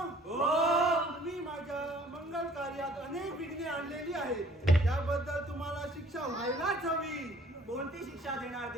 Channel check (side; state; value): both; normal; correlation 0.56